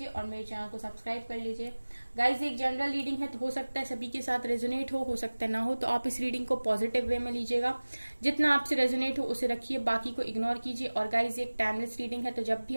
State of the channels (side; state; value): both; inverted; correlation -1.00